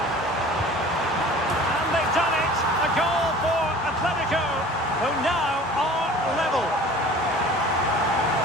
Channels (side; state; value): both; normal; correlation 0.44